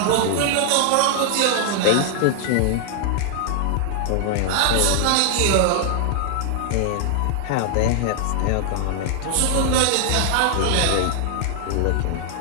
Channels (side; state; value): both; different; correlation 0.00